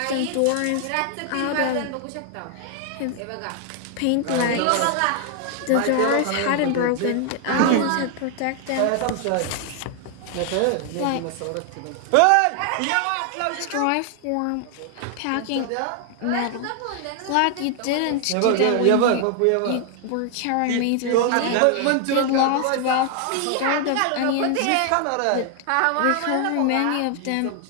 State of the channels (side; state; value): both; different; correlation 0.00